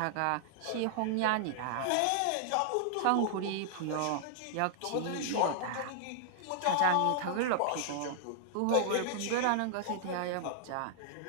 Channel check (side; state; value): both; different; correlation -0.01